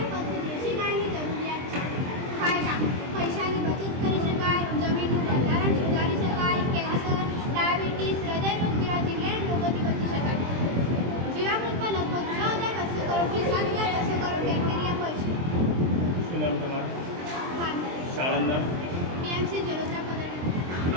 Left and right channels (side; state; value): left; late; 23 ms